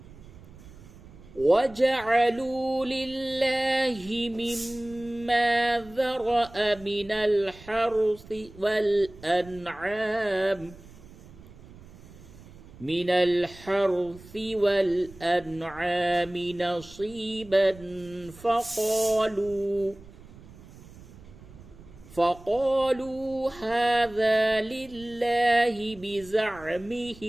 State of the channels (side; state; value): right; noise; rumble, 20 dB below the sound